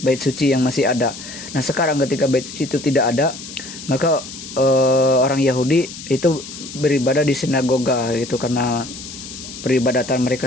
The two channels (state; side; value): noise; left; hiss, 12 dB below the sound